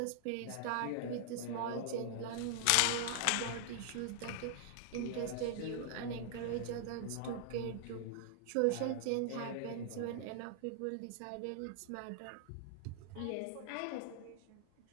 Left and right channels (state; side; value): different; both; correlation 0.00